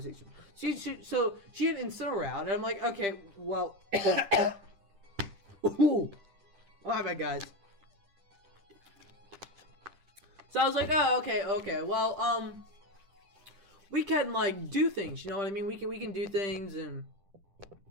So she had Incineroar out, and I'm like, okay, well, ooh, my bad, guys. So I was like, oh, okay, well, we can like do things, you know what I mean? We can do things and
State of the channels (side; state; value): left; late; 10 ms